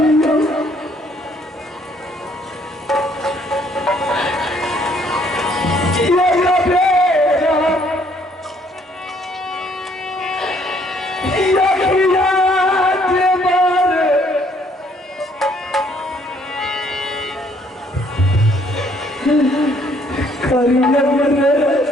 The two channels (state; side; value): normal; both; correlation 0.65